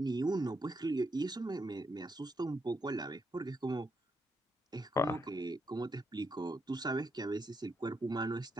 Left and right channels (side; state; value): both; normal; correlation 0.80